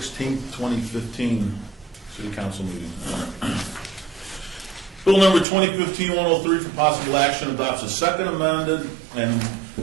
2015 City Council meeting. Bill number 2015-103 for possible action adopts a second amended and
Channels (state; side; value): drops out; left; at 5.5 s